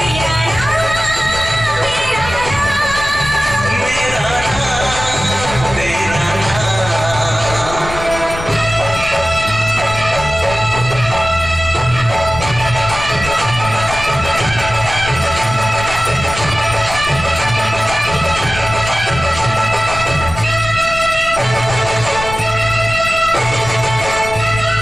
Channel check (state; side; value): noise; left; rumble, 10 dB below the sound